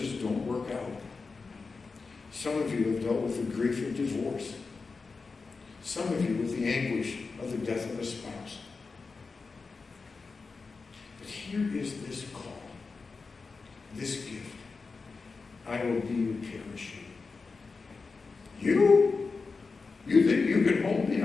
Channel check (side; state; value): right; quieter; 4.4 dB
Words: don't work out. Some of you have dealt with the grief of divorce. Some of you with the anguish of the death of a spouse. But here is this call, this gift. I will be your parachute. You? You think you can hold me